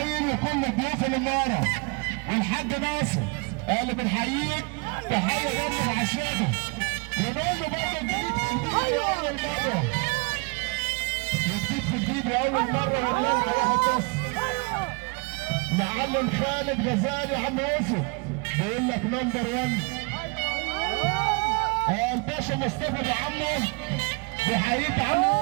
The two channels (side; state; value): left; quieter; 30.7 dB